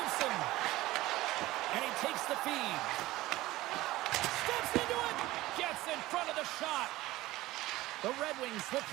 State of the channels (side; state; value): left; quieter; 17.6 dB